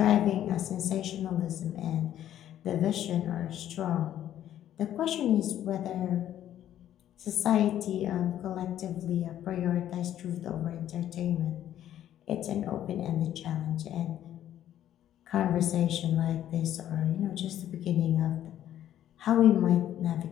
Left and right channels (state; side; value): quieter; right; 11.5 dB